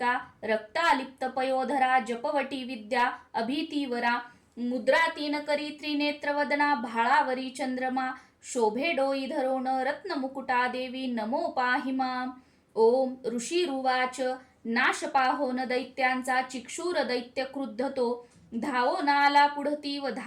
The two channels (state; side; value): identical; both; correlation 1.00